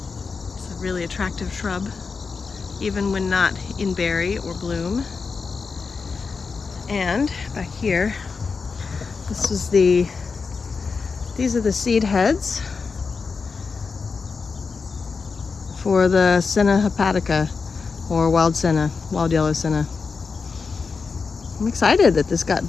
It's a really attractive shrub, even when not in berry or bloom. And back here, these are the seed heads for the Senna hepatica, or wild senna, wild yellow senna. I'm excited that this got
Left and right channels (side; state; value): right; quieter; 4.9 dB